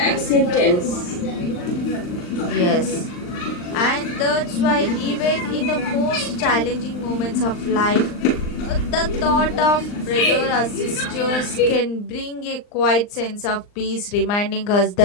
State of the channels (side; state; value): right; late; 39 ms